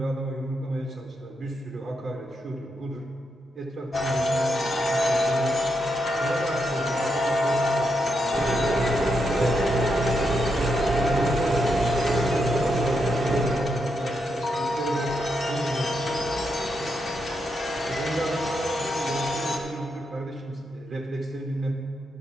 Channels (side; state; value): both; normal; correlation 0.82